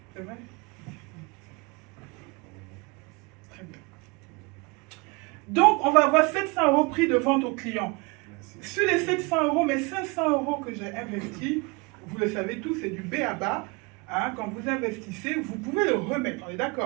C'est vrai? Très bien. Donc, on va avoir 700 euros prix de vente au client. Sur les 700 euros, mais 500 euros que j'ai investis, vous le savez tous, c'est du B à bas. Hein, quand vous investissez, vous pouvez le remettre, on est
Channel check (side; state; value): left; quieter; 28.2 dB